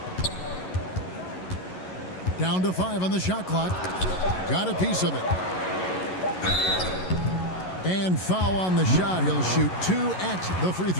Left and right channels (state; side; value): late; right; 11 ms